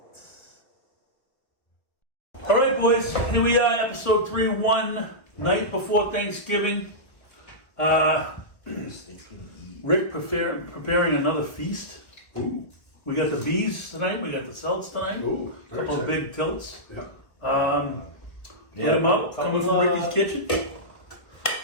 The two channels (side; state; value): right; late; 1.4 ms